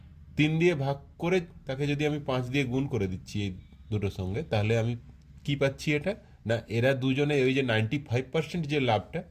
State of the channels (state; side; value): identical; both; correlation 1.00